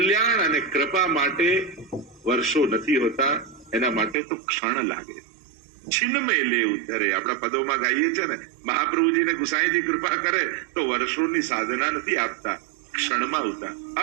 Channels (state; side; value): drops out; left; at 4.2 s